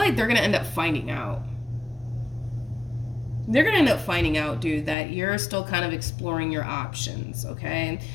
they're going to end up finding out. They're going to end up finding out, dude, that you're still kind of exploring your options, okay?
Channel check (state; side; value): drops out; right; at 5.0 s